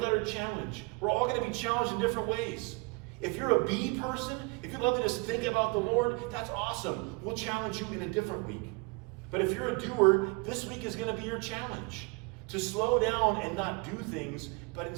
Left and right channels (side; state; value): left; quieter; 28.6 dB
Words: challenge. We're all going to be challenged in different ways. If you're a be person, if you love to just think about the Lord, that's awesome. We'll challenge you in a different week. But if you're a doer, this week is going to be your challenge. To slow down and not do things, but